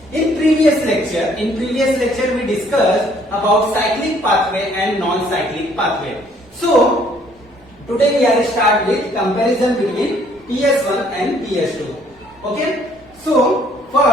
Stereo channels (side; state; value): both; normal; correlation 0.62